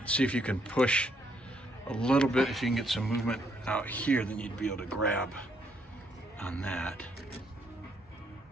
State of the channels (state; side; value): normal; both; correlation 0.72